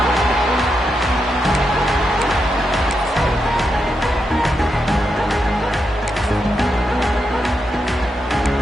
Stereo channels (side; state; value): both; normal; correlation 0.84